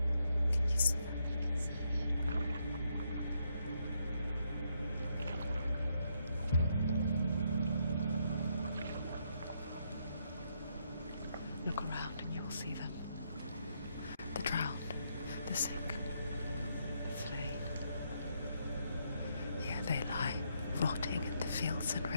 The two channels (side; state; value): both; inverted; correlation -0.76